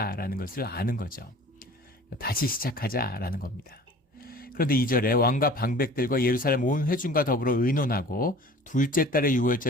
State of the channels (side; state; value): both; normal; correlation 0.45